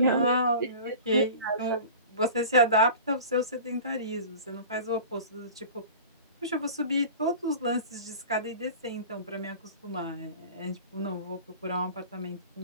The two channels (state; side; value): inverted; both; correlation -0.39